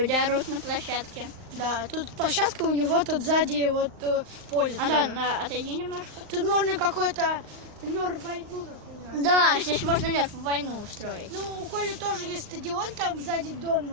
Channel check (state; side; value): late; left; 39 ms